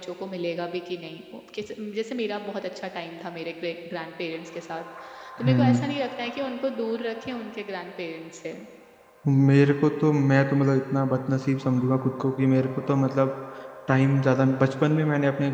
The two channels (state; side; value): identical; both; correlation 1.00